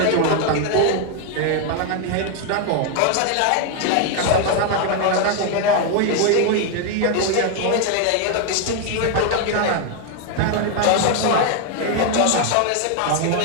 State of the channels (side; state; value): both; different; correlation 0.00